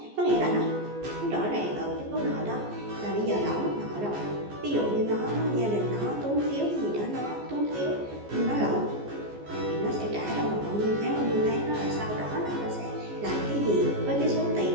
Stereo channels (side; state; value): left; late; 14 ms